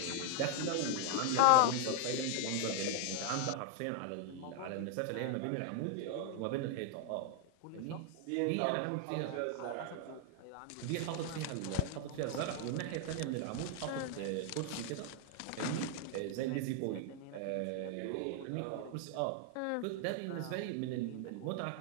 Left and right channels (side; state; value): both; different; correlation 0.00